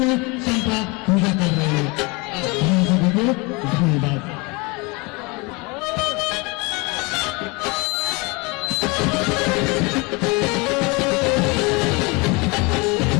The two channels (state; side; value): quieter; right; 27.5 dB